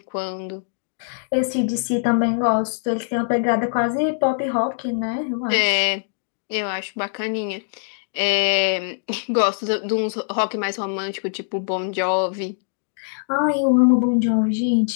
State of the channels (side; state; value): right; silent; digital silence